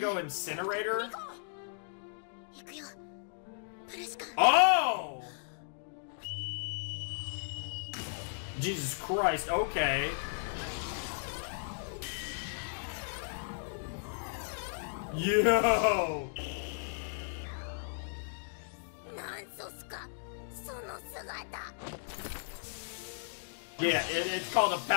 incinerator? 行くよ。プレシカ。 Oh! Jesus Christ, okay. Yo! なんソスか。その姿。 Yeah, it's called a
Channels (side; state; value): right; silent; digital silence